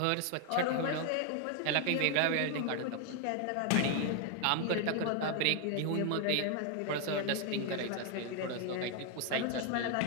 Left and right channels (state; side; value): different; both; correlation 0.01